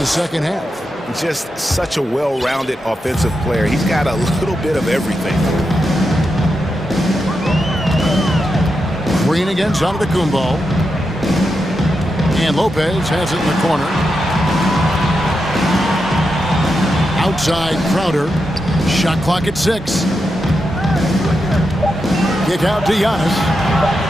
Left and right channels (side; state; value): both; normal; correlation 0.87